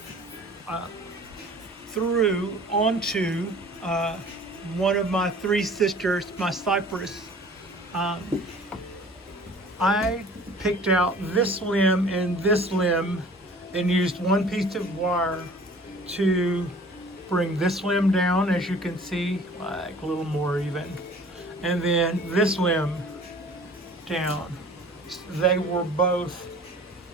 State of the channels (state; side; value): normal; both; correlation 0.48